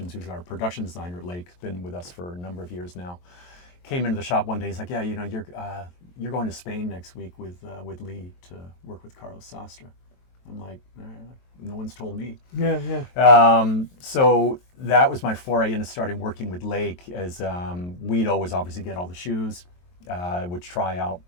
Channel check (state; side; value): late; right; 23 ms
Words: who's our production designer at Lake, has been with us for a number of years now, came into the shop one day. He's like, yeah, you're going to Spain next week with Lee to work with Carlos Sastre. I'm like, no one's told me. Yeah. So that was my foray into starting working with Lake, as we'd always obviously get all the shoes. He would